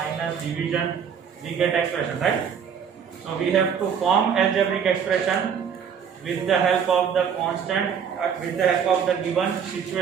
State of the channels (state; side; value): quieter; left; 7.4 dB